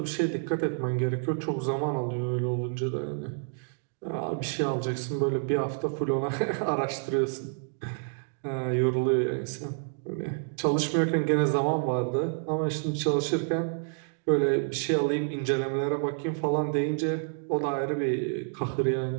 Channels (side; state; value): left; silent; digital silence